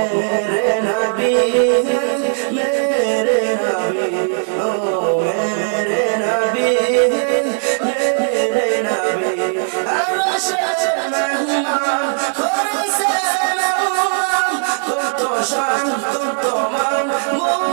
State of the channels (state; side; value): silent; left; 65 dB below the other